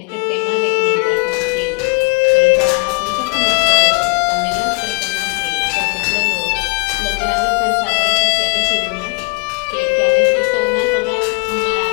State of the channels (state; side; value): quieter; right; 32.9 dB